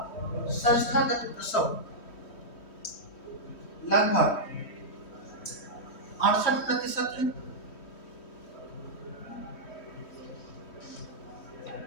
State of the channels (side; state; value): right; late; 3.1 ms